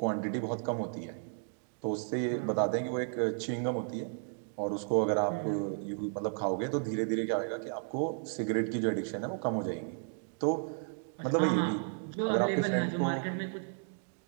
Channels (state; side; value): silent; left; 55 dB below the other